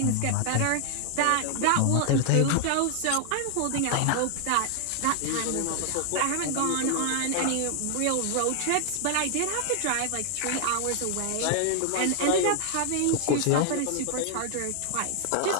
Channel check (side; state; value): both; different; correlation 0.00